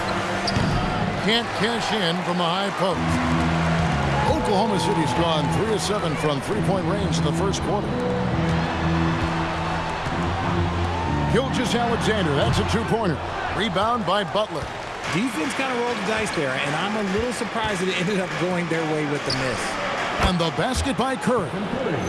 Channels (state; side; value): identical; both; correlation 1.00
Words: Can't cash in from the high post. Oklahoma City's gone 3 of 7 from three-point range in the first quarter. Gilgeous-Alexander, that's a two-pointer. Rebound by Butler. Defense kind of rolled the dice there, and I'm a little surprised that it ended up going their way with the miss. And the basket by Curry.